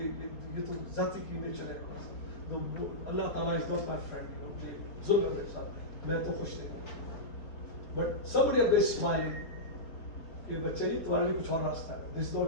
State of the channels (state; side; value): late; right; 4.3 ms